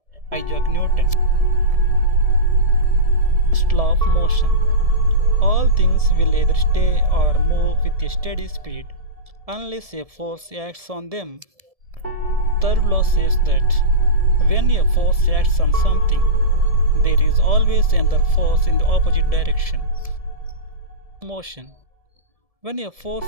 Isaac Newton. First law of motion. All things will either stay or move with a steady speed unless a force acts on them. Third law says that when a force acts on something, there is always another force in the opposite direction. Motion. When a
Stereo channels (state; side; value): late; left; 1.7 ms